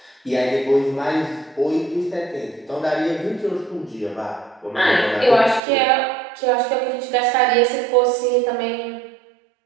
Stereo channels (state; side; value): drops out; left; at 5.6 s